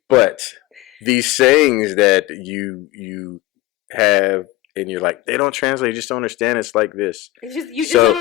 But these sayings that you have and you're like, they don't translate, you just don't understand, it's like this. You just don't So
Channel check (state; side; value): quieter; right; 17.2 dB